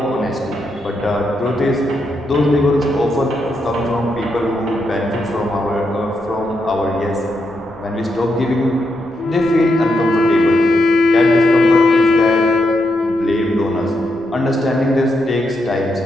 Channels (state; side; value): noise; right; rumble, 28 dB below the sound